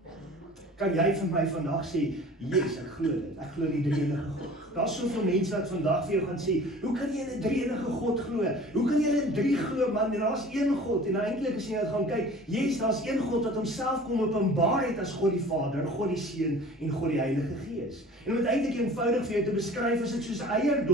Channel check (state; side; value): normal; both; correlation 0.45